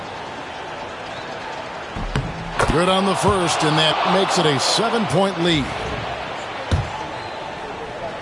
Good on the first, and that makes it a 7-point lead.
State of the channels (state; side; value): identical; both; correlation 1.00